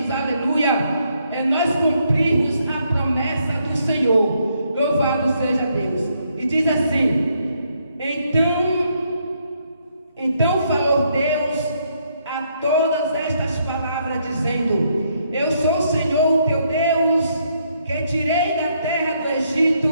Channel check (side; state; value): both; inverted; correlation -0.74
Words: aleluia, é nós cumprirmos a promessa do Senhor. Louvado seja Deus. E diz assim: então falou Deus a todas estas palavras, dizendo: eu sou o Senhor, teu Deus, que tirei da terra do